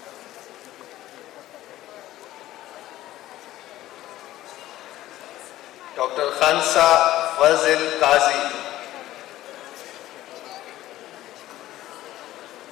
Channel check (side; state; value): right; quieter; 14.8 dB